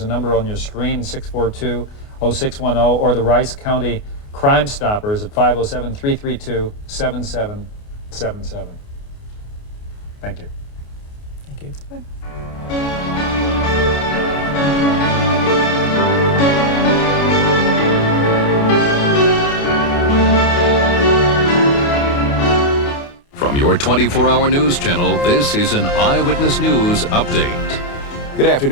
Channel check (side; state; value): right; late; 28 ms